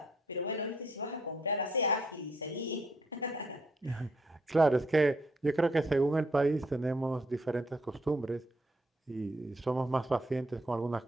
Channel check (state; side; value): normal; both; correlation 0.71